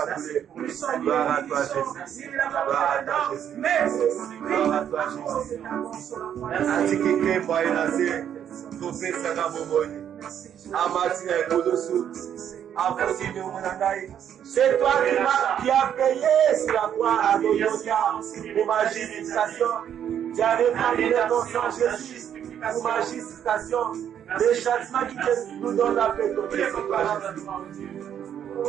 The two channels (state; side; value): quieter; left; 9.4 dB